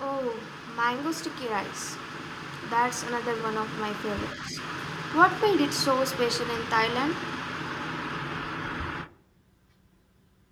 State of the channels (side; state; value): both; identical; correlation 1.00